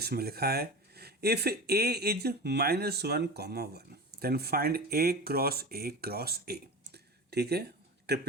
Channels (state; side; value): normal; both; correlation 0.30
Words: लिखा है if A is -1, 1, then find A cross A cross A। ठीक है,